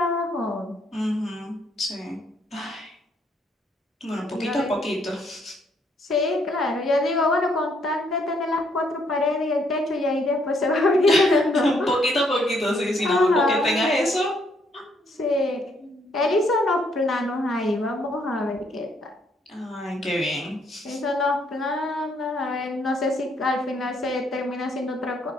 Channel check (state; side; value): normal; both; correlation 0.70